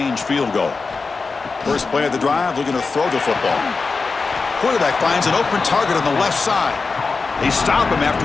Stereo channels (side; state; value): right; quieter; 4.3 dB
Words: field goal. First play of the drive, looking to throw the football. Quarterback finds an open target on the left side. They stop him